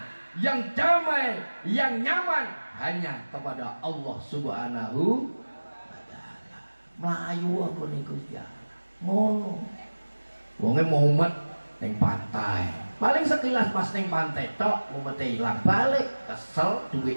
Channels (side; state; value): both; inverted; correlation -1.00